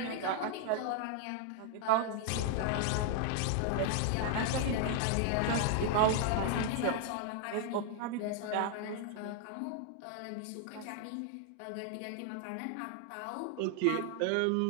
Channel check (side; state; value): both; different; correlation 0.00